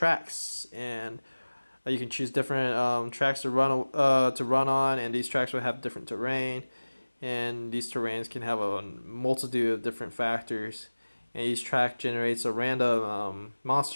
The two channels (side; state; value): both; inverted; correlation -1.00